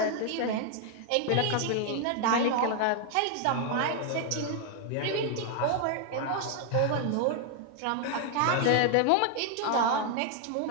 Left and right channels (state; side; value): different; both; correlation 0.00